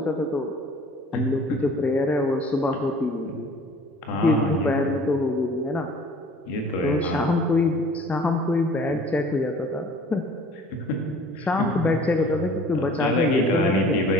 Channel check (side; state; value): both; normal; correlation 0.50